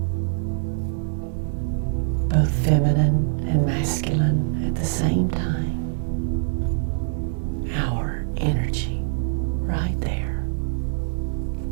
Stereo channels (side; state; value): left; silent; digital silence